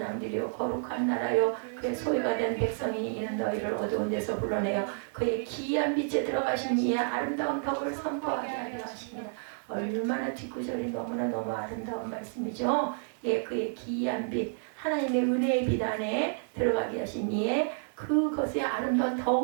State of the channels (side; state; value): left; silent; 58 dB below the other